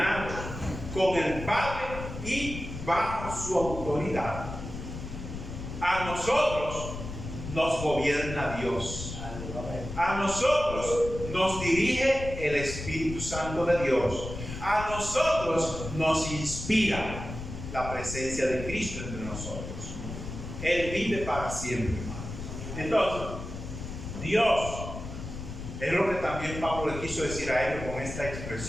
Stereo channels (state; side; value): noise; left; rumble, 8 dB below the sound